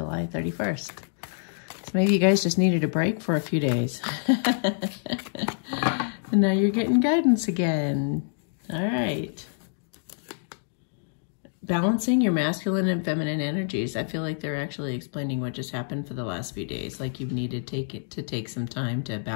31st. So maybe you guys just needed a break for a few days. And now you're getting guidance again. All right. Balancing your masculine and feminine energies. I feel like they're actually explaining what just happened for the last few days. Like you've needed to take some time to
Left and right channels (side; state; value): right; silent; digital silence